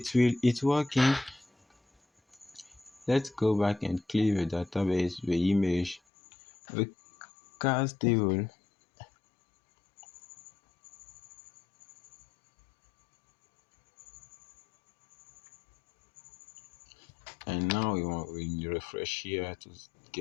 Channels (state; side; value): drops out; right; at 6.0 s